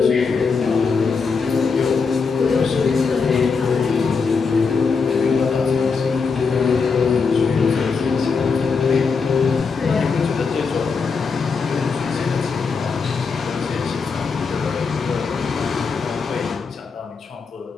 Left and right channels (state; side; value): quieter; right; 5.1 dB